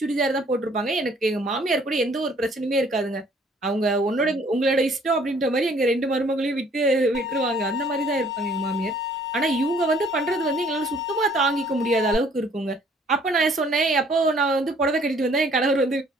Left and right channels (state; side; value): normal; both; correlation 0.59